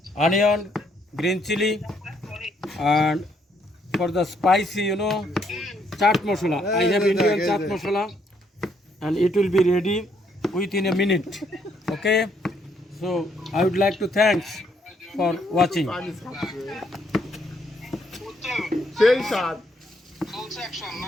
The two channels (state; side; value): normal; both; correlation 0.71